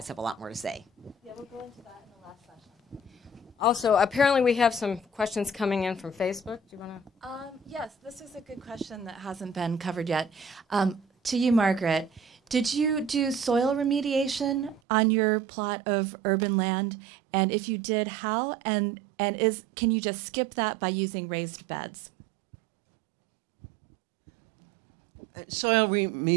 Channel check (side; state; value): left; drops out; at 14.8 s